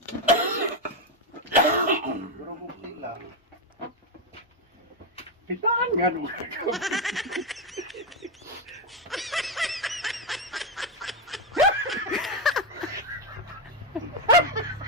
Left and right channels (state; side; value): normal; both; correlation 0.06